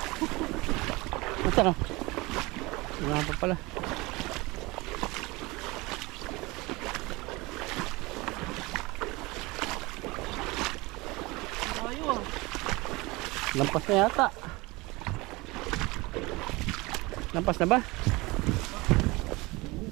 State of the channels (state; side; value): quieter; left; 23.2 dB